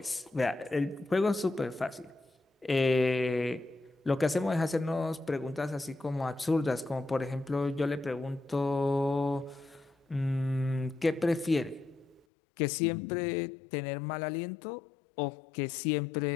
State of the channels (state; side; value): drops out; right; at 12.2 s